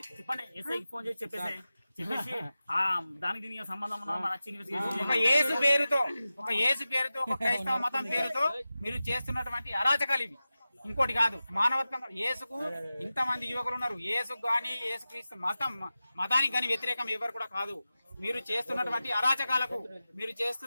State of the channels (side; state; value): both; inverted; correlation -0.95